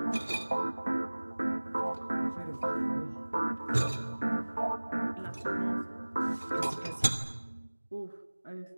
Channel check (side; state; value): both; inverted; correlation -1.00